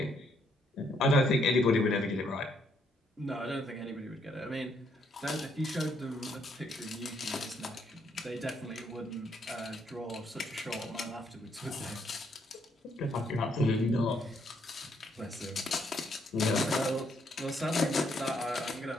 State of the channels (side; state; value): both; normal; correlation 0.72